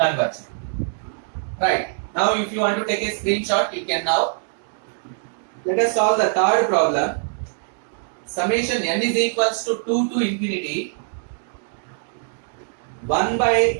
Right. Now if you want to take a screenshot, you can now. Let us solve the third problem. Summation n is equals to 2 to infinity 1 by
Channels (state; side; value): silent; left; digital silence